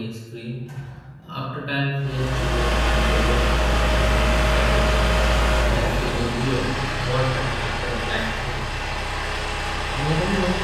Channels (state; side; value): identical; both; correlation 1.00